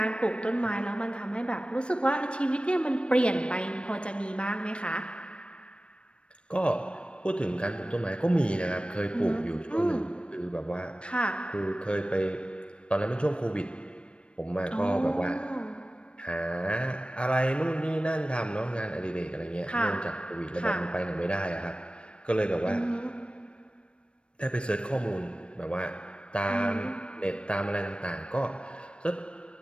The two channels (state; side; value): late; right; 0.058 ms